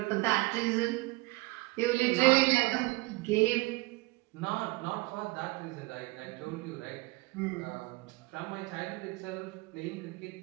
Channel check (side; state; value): left; quieter; 23.5 dB